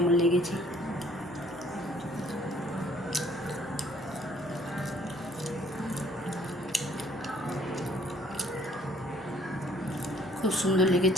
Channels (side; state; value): left; noise; hum, 23 dB below the sound